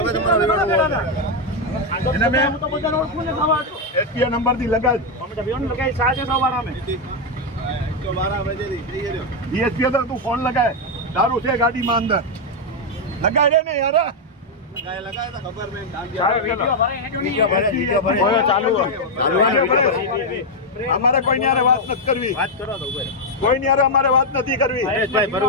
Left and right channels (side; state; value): both; normal; correlation 0.01